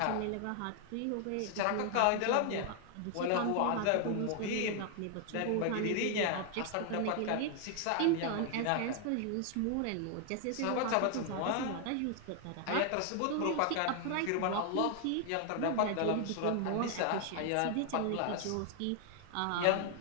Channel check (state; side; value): different; both; correlation 0.00